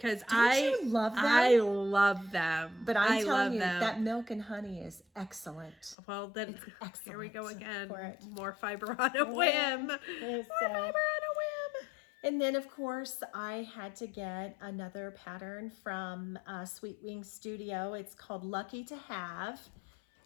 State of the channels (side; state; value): right; drops out; at 6.0 s